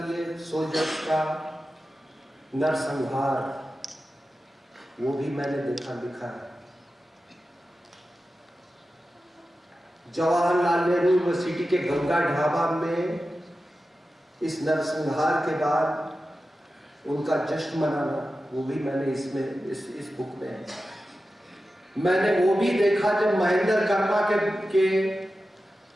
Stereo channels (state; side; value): normal; both; correlation 0.93